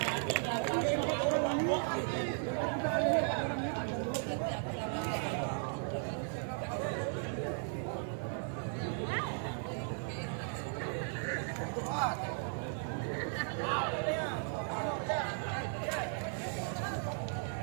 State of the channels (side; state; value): left; silent; 54 dB below the other